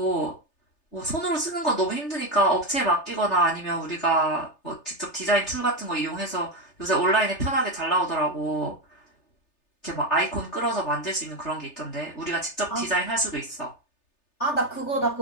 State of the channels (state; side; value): late; right; 3.3 ms